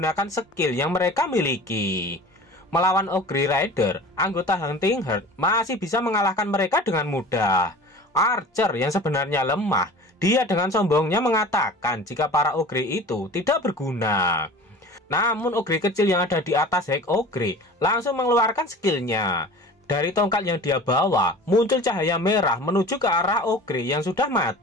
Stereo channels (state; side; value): normal; both; correlation 0.39